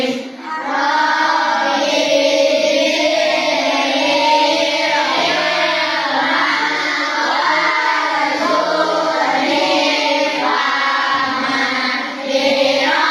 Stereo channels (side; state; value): both; identical; correlation 1.00